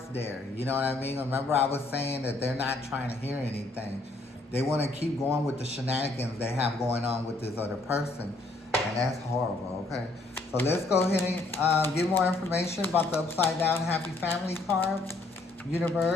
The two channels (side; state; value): right; quieter; 3.0 dB